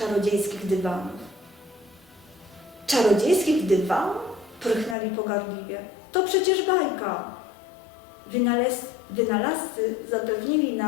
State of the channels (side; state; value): right; drops out; at 5.0 s